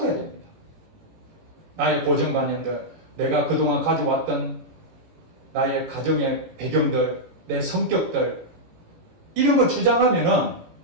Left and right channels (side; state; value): left; late; 17 ms